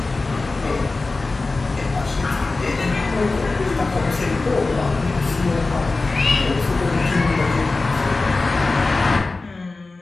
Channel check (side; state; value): right; quieter; 3.5 dB